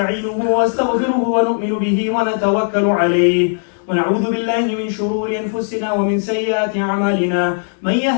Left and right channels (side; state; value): right; silent; digital silence